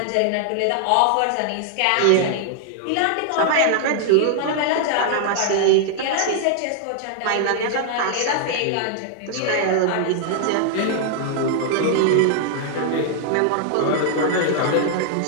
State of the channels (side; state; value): both; different; correlation 0.00